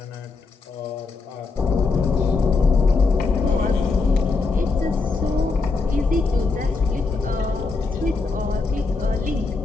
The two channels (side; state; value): right; quieter; 4.1 dB